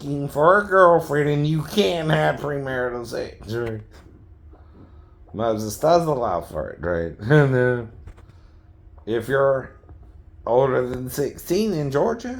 for a girlfriend, and you can't have premarital sex, right? Moses does allow for it, right? And if you're older than 16 in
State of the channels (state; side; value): identical; both; correlation 1.00